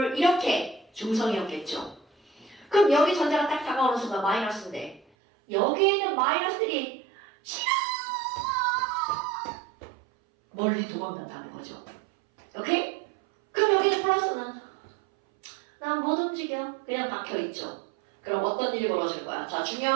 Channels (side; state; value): left; drops out; at 5.0 s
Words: 이렇게 중성이었겠죠. 그럼 여기 전자가 딱 다가오는 순간 마이너스인데 여기에 있는 마이너스들이 싫어! 멀리 도망간다는 거죠. 오케이? 그럼 여기는 플러스는 난 못 움직여. 그냥 박혀있죠. 그럼 어떤 일이 벌어질 거야? 자,